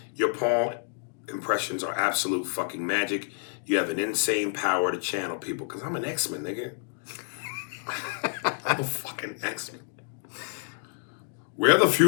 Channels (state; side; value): silent; right; digital silence